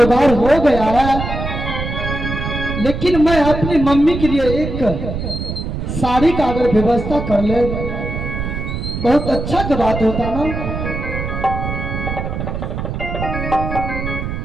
हो गया है, लेकिन मैं अपनी मम्मी के लिए एक साड़ी का अगर व्यवस्था कर ले बहुत अच्छा की बात होता ना।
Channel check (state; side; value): noise; right; rumble, 4 dB below the sound